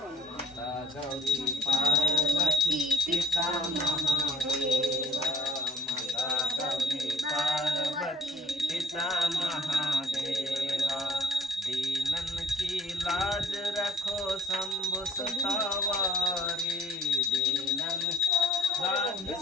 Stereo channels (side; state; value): both; normal; correlation 0.57